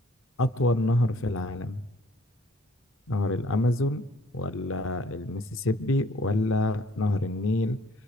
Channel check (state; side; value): normal; both; correlation 0.59